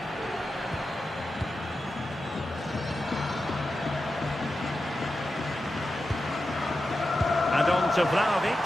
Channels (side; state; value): both; normal; correlation 0.91